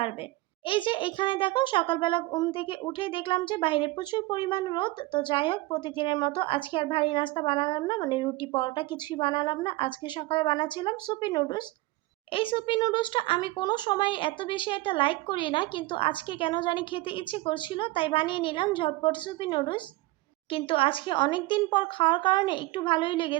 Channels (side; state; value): left; quieter; 20.2 dB